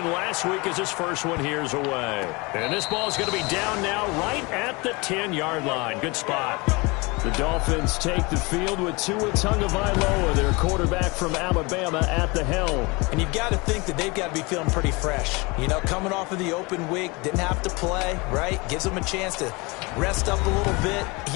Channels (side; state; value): right; quieter; 26.2 dB